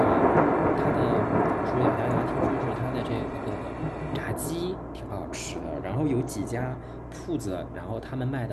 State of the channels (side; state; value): both; identical; correlation 1.00